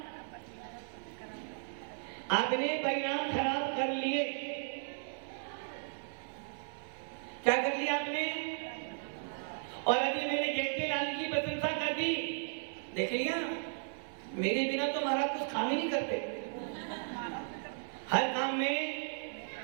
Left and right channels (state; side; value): silent; left; 54 dB below the other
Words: आपने परिणाम खराब कर लिए। क्या कर लिया आपने? और अभी मैंने जयंती लाल की प्रशंसा कर दी, देख लिया, मेरे बिना तो महाराज कुछ काम ही नहीं करते। हर काम में